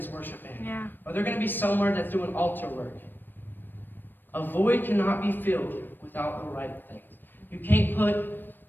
worship band. Yeah. Or they're going to be somewhere that's doing altar work. A void cannot be filled without the right things. You can't put,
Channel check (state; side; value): late; right; 0.094 ms